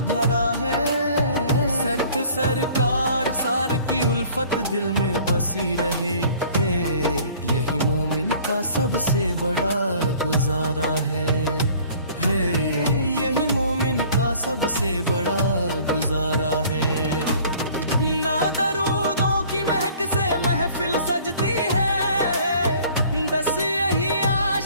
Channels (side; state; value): both; inverted; correlation -0.52